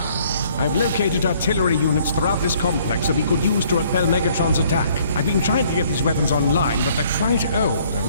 I've located artillery units throughout this complex that we could use to repel Megatron's attack. I've been trying to get these weapons online, but they're quite old.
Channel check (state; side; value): inverted; both; correlation -0.61